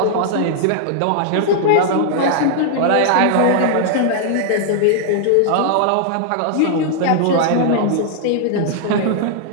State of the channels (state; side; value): different; both; correlation -0.01